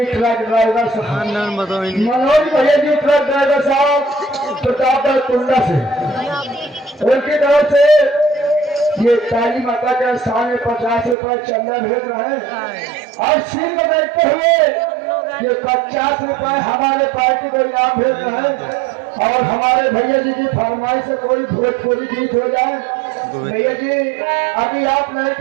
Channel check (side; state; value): left; drops out; at 11.2 s